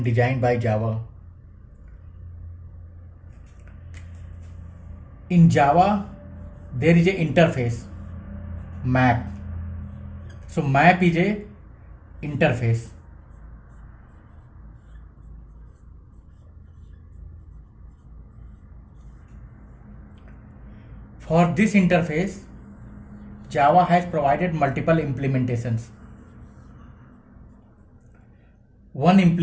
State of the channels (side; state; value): both; identical; correlation 1.00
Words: designed by Java. In Java, there is a interface map. So map is a interface. For this interface, Java has provided multiple implementations. One